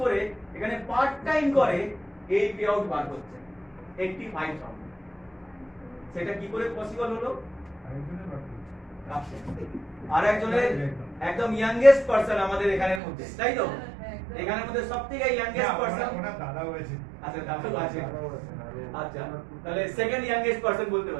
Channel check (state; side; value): drops out; left; at 13.0 s